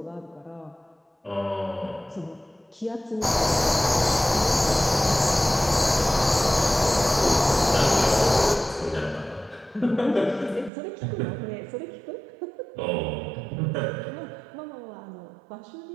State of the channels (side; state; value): left; drops out; at 10.7 s